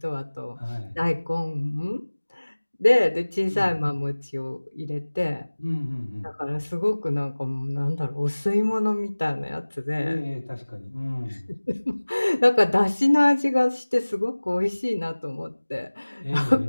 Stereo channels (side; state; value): both; inverted; correlation -1.00